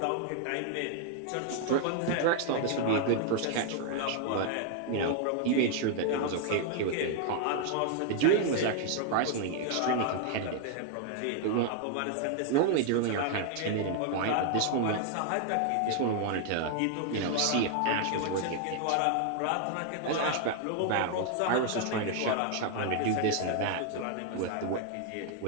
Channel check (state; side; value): different; both; correlation 0.00